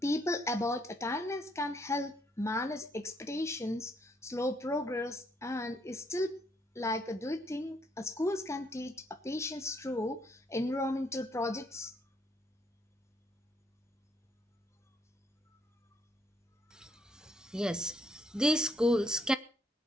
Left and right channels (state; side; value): normal; both; correlation 0.70